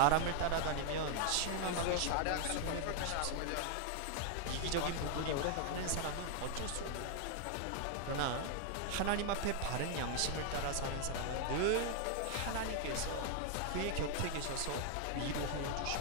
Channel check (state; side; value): different; both; correlation 0.00